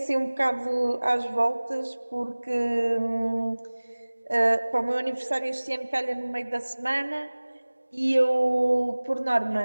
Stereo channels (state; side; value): inverted; both; correlation -1.00